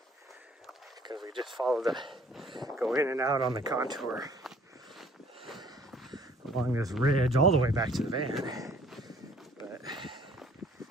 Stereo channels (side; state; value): both; normal; correlation 0.56